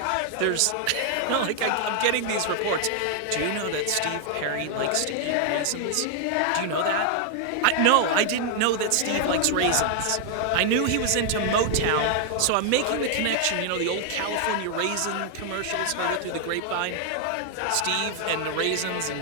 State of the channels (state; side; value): different; both; correlation 0.00